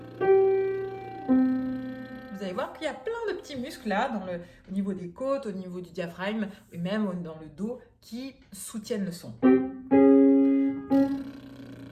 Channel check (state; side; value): identical; both; correlation 1.00